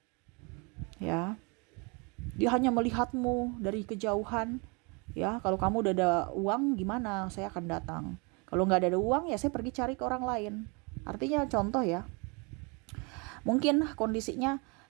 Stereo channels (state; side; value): quieter; left; 31.0 dB